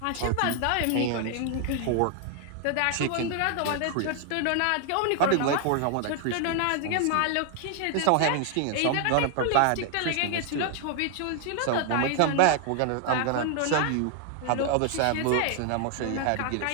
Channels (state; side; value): different; both; correlation 0.00